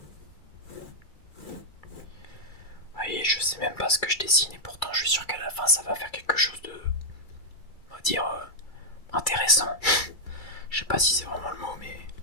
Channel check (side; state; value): right; late; 2.3 ms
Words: Voyez, je sais même pas ce que je dessine et pourtant je suis sûr qu'à la fin ça va faire quelque chose de, on va dire, intéressant. Je sais pas si c'est vraiment le mot, mais